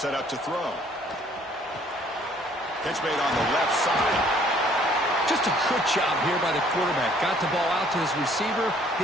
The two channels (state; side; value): normal; both; correlation 0.60